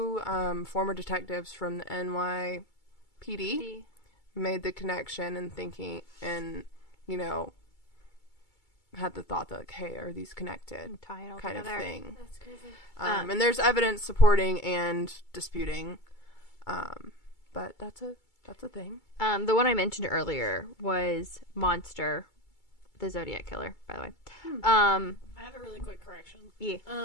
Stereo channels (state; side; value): late; right; 2.3 ms